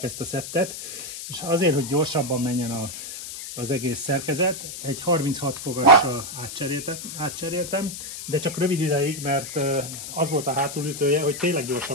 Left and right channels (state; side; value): noise; left; hiss, 9 dB below the sound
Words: ezt a szettet, és azért, hogy gyorsabban menjen az egész szerkezet, egy 36 fogassal átcseréltem, de csak rövid ideig, mert az volt a hátulütője, hogy tényleg